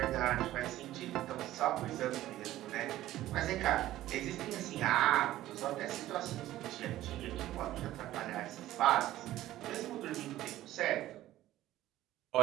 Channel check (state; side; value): quieter; left; 14.6 dB